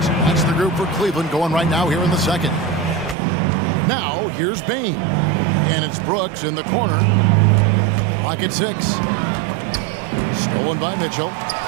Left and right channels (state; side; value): drops out; left; at 3.2 s